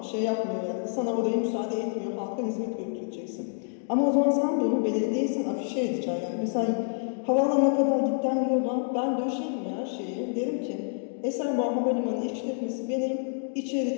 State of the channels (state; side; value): silent; right; digital silence